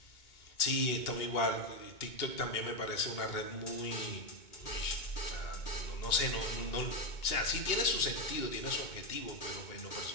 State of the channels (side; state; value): right; late; 2.2 ms